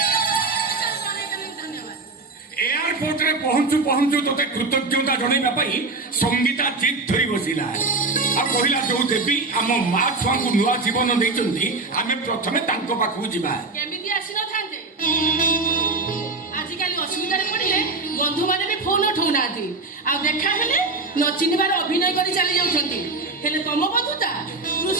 एयरपोर्ट रे पहुंचु पहुंचु तोते कृतज्ञता जणाइबा पई संगीता जिद धरी बसिला आ कहिला जो देवी आम मां छुआ को नुआ जीवन देइचंती आमे प्रथमे तांको पाखु जिबा केमिति आसी न थांते आजिकाली असुविधा रे पड़िले बंधु माने भी फोन उठाउनाती आ देखा हेले न चिनिबार अभिनय करी चली जाउछंती हेले तम बंधुता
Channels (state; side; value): quieter; left; 3.6 dB